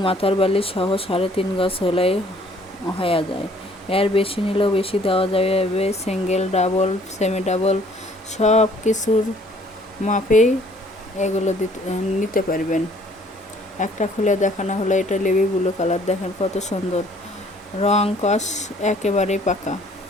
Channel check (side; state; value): both; normal; correlation 0.59